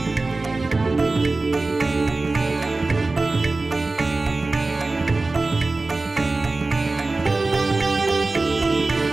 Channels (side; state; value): left; quieter; 3.4 dB